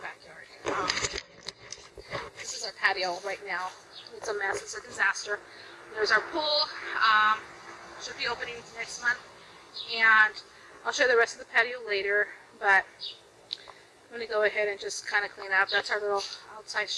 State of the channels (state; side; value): identical; both; correlation 1.00